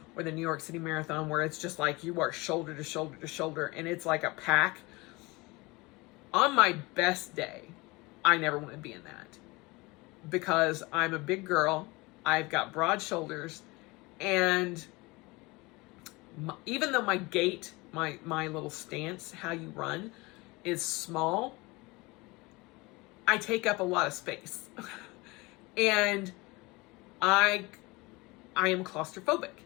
or the New York City Marathon, where it's just like you are shoulder to shoulder to shoulder, and it's like a pack. On my best day, I never want to be in that, because I'm a big girl. I've got broad shoulders, and even though my gait, my little stance, how you run, is small, I take up a lot of space. And I am claustrophobic.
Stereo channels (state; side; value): quieter; right; 23.9 dB